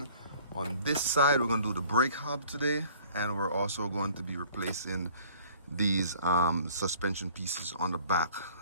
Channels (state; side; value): inverted; both; correlation -0.53